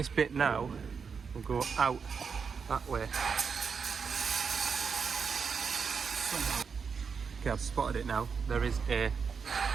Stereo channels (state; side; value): quieter; left; 5.9 dB